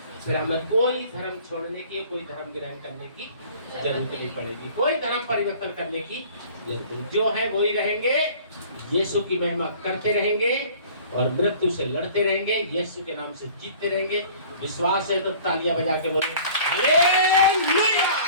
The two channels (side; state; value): both; inverted; correlation -0.48